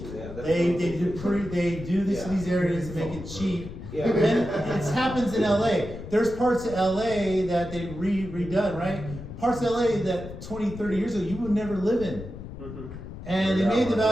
Yeah, that's They do this in these areas to make it cheap. Yeah. Then it happens in LA. There's parts of LA that they redone, right? Parts of LA that 20, 30 years ago you would never live in. Mhm. And they made the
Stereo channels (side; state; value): left; noise; rumble, 11 dB below the sound